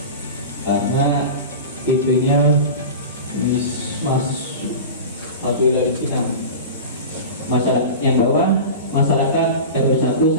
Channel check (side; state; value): both; inverted; correlation -0.30